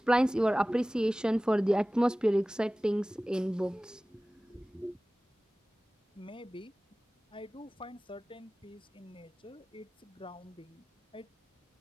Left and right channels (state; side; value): normal; both; correlation 0.97